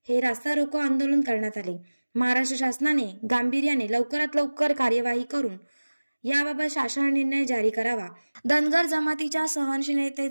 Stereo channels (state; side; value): inverted; both; correlation -1.00